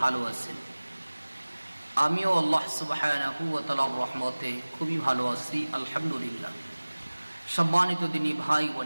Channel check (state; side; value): inverted; both; correlation -1.00